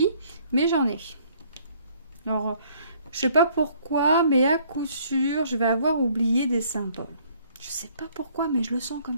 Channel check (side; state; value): both; inverted; correlation -0.61